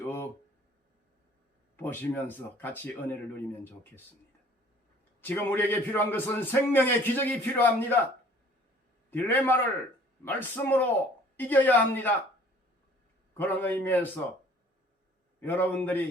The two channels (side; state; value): both; normal; correlation 0.54